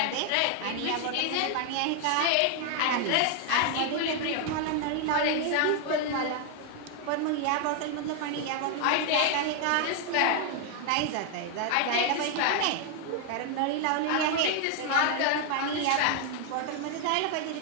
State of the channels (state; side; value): different; both; correlation 0.00